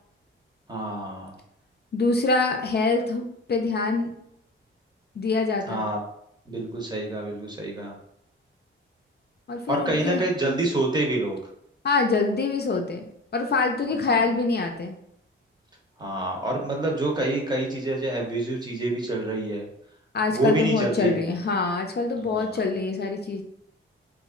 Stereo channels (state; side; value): normal; both; correlation 0.36